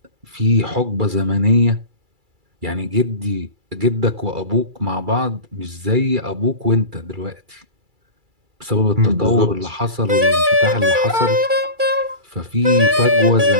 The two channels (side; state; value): left; late; 2.3 ms